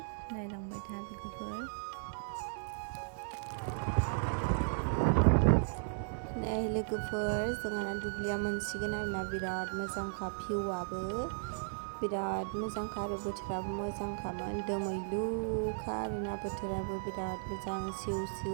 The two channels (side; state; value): left; silent; 54 dB below the other